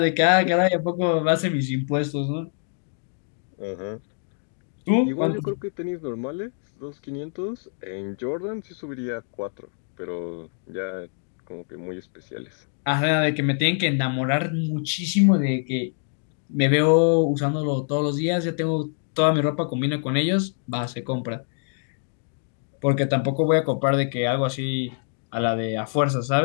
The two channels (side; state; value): right; silent; 62 dB below the other